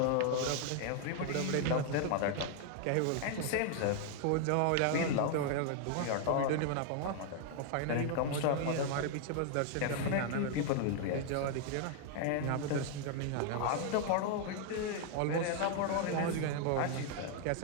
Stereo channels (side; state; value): both; different; correlation 0.00